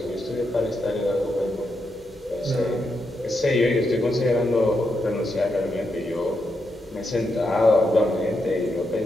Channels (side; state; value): both; normal; correlation 0.83